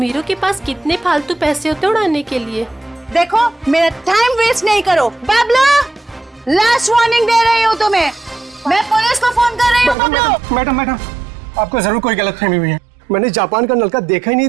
के पास कितने फालतू पैसे होते उड़ाने के लिए। देखो मेरा टाइम वेस्ट नहीं करो। बबलू, लास्ट वार्निंग दे रही हूँ तुम्हें, मैं पुलिस को फोन कर रही हूँ। बबलू। मैडम, आपको जरूर कोई गलतफहमी हुई है। मैंने जापान का नलका देखा ही नहीं,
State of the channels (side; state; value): left; drops out; at 10.0 s